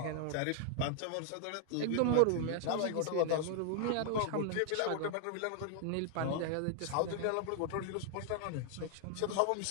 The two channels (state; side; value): different; both; correlation 0.00